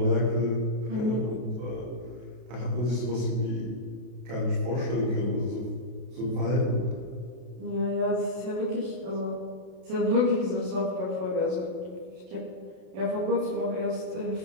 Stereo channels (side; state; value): left; late; 32 ms